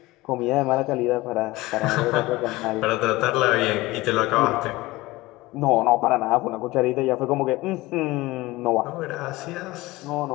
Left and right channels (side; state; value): right; quieter; 19.9 dB